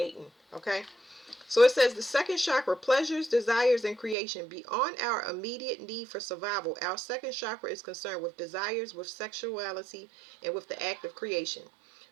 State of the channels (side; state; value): left; drops out; at 4.2 s